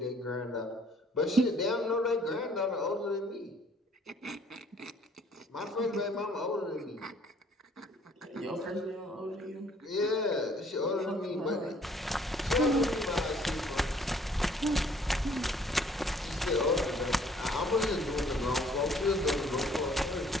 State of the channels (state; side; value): normal; both; correlation 0.59